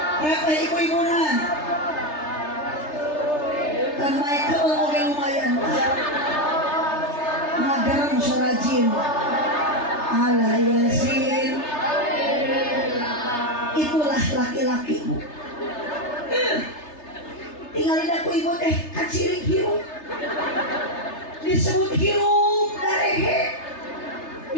repeh ibu-ibuna kan Michael oke lumayan ngagarang surajin ala yasin itulah laki-laki bu tinggalin aku ibu teh kacirik hirup disebut hirup darehe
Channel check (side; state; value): right; late; 3.3 ms